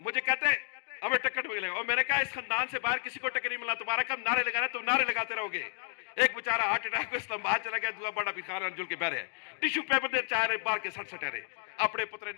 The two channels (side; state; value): right; silent; digital silence